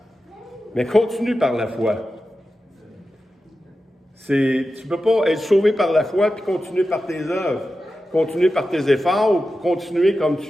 mais continue par la foi. Tu ne peux pas être sauvé par la foi puis continuer par tes œuvres, continuer par tes efforts ou continuer comme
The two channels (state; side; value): normal; both; correlation 0.92